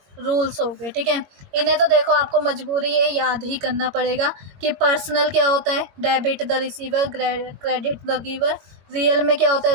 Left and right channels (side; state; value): left; late; 21 ms